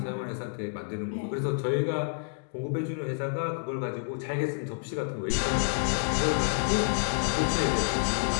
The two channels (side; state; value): right; silent; digital silence